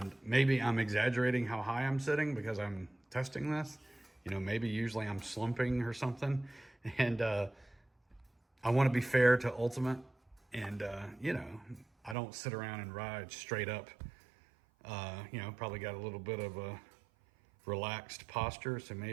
maybe I'm exaggerating how high I'm sitting because I'm testing this. Maybe usually I'm slumping or something. And I want to be fair to Ultimate. And, I don't sit around and ride straight up. Probably got a little bit of a relaxed posture. So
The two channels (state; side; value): drops out; left; at 12.2 s